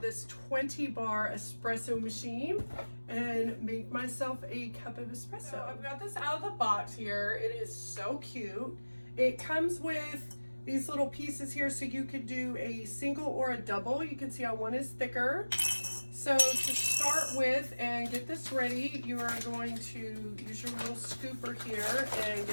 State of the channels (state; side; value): inverted; both; correlation -1.00